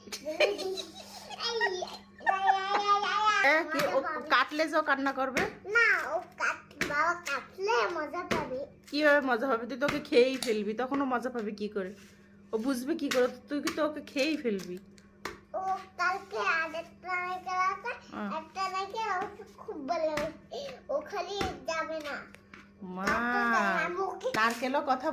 কি ও কাটলে যে ও কান্না করবে? না ও বাবা কাটলে মজা পাবে। কিভাবে মজা হবে? তুই তোকে খেয়েই ফেলবি, তখন ও মজা পাবে কি করে? ও বুঝবে কি করে? তুই কি তো ওকে খেয়েই ফেলবি। ও কালকে আরেকটা নারকেল আছে, একটা নারকেল আমাকে খুব ভালো লাগে, ও খালি যাবে না। মা নারকেলও কথা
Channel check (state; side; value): identical; both; correlation 1.00